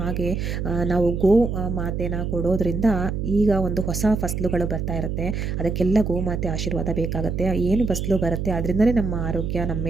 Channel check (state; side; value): noise; right; hum, 2 dB below the sound